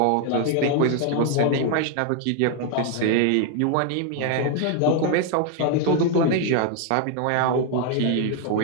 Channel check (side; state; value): both; different; correlation 0.00